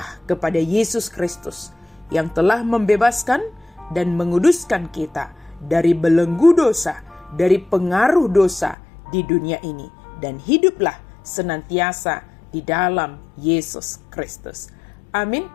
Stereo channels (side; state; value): right; drops out; at 8.8 s